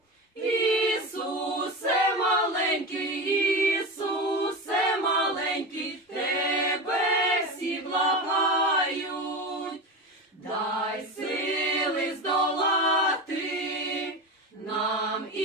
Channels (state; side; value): normal; both; correlation 0.23